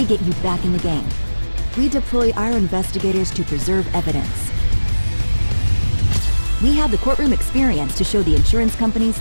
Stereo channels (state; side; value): inverted; both; correlation -1.00